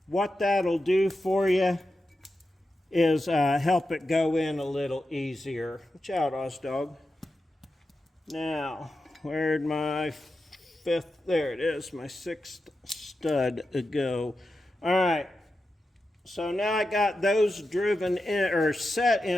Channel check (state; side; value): normal; both; correlation 0.90